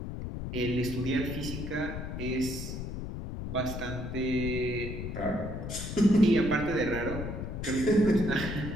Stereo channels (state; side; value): noise; left; rumble, 6 dB below the sound